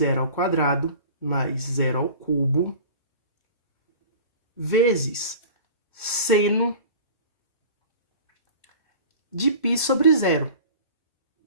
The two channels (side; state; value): both; inverted; correlation -0.41